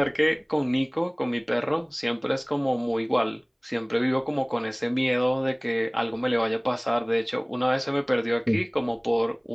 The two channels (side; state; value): both; identical; correlation 1.00